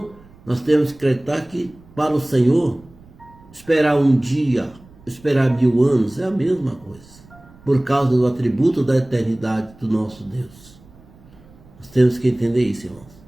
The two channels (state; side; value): noise; right; rumble, 25 dB below the sound